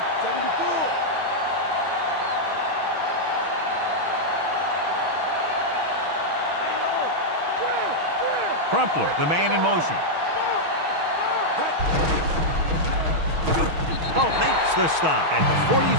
74. Crumpler, the man in motion. Oh, makes the stop at the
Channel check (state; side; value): late; left; 6.3 ms